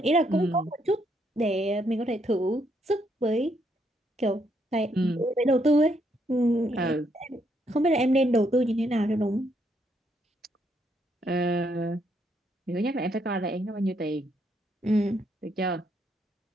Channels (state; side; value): normal; both; correlation 0.74